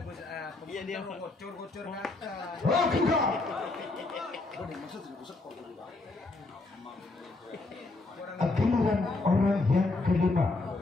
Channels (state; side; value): quieter; right; 3.3 dB